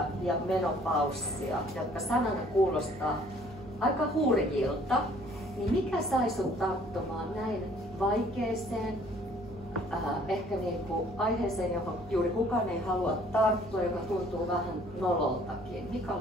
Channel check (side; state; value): both; normal; correlation 0.58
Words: ja menopaussia, jotka sanana kuulostaa aika hurjilta. Niin mikä sai sut tarttumaan näin vaikeeseen, ehkä aiheeseen, johon juuri kukaan ei halua tarttua, joka tuntuu vähän nololtakin. Mikä